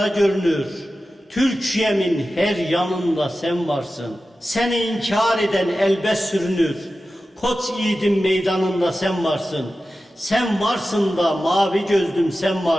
görünür. Türkiye'min her yanında sen varsın. Seni inkar eden elbet sürünür. Koç yiğidin meydanında sen varsın. Sen varsın da mavi gözlüm sen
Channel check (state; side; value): normal; both; correlation 0.94